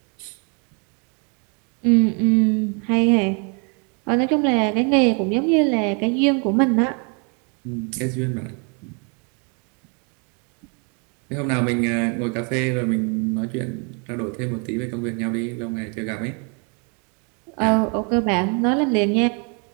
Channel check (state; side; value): quieter; left; 36.5 dB